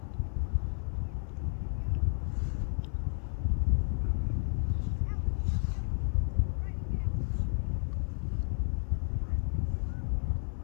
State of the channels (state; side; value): silent; right; 56 dB below the other